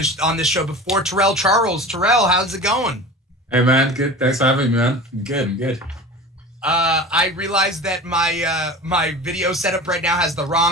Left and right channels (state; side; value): normal; both; correlation 0.35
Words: this show before, Terrell Charles. Terrell, how's it going? Hey, man. Good. Thanks for having me, man. I'm good. I realized that my video setup right now has the